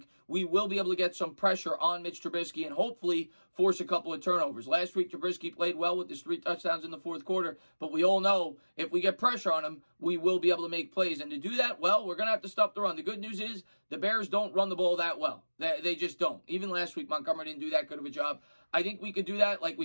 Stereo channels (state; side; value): inverted; both; correlation -1.00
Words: we will be able to get some pressure on Mitch Trubisky and hopefully force a couple of turnovers. Last week, Trubisky played well with his 3 touchdowns in the fourth quarter, but we all know if we get pressure on him, we will be able to make plays. And to do that, well, we're going to have to stop the run. The good news is the Bears don't run the ball that well. They just don't. Even last week, Montgomery didn't do that good of a job. I think we could do that like